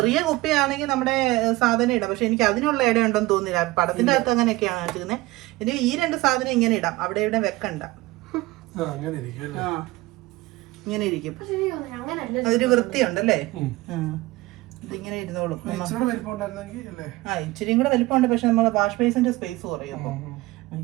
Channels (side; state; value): left; quieter; 20.0 dB